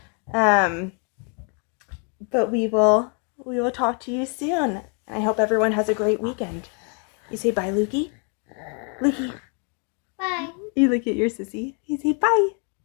But we will talk to you soon. I hope everyone has a great weekend. You say bye, Lukey? Lukey. Bye. You look at your sissy. You say bye.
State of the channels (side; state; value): right; quieter; 39.5 dB